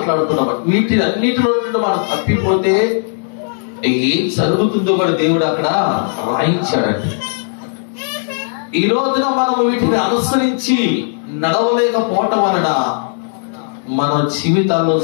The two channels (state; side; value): silent; right; digital silence